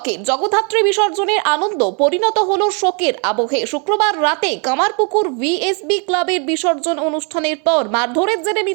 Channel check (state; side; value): quieter; left; 36.6 dB